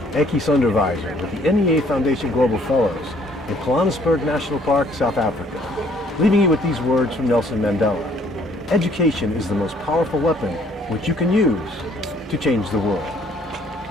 Ekis Onderwyser with the NEA Foundation Global Fellows in Johannesburg National Park, South Africa, leaving you with these words from Nelson Mandela. Education is the most powerful weapon which you can use to change the world.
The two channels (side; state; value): both; normal; correlation 0.61